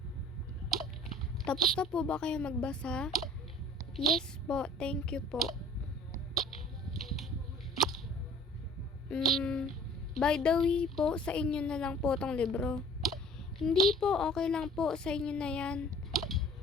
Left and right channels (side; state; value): both; normal; correlation 0.49